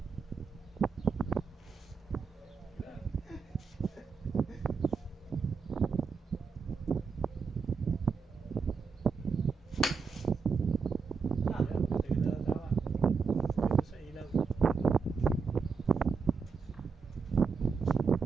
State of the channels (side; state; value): left; quieter; 5.3 dB